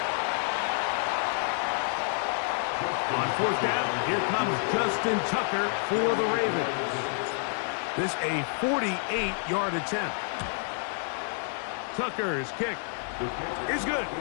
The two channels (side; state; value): right; silent; 59 dB below the other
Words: On 4th down, here comes Justin Tucker for the Ravens. This a 48-yard attempt. Tucker's kick is good.